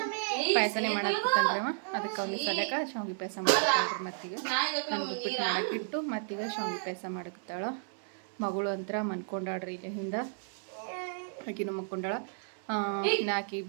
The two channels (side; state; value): left; silent; 56 dB below the other